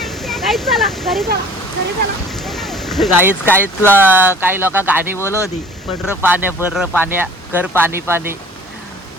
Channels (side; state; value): both; normal; correlation 0.48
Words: काहीच काही लोक गाणी बोलवती, पडर पाण्या कर पाणी पाणी.